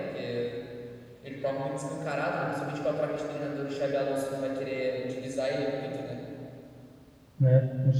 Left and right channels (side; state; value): both; identical; correlation 1.00